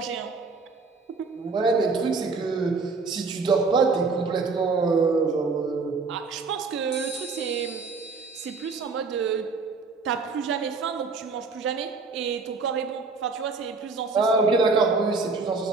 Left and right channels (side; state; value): left; quieter; 4.3 dB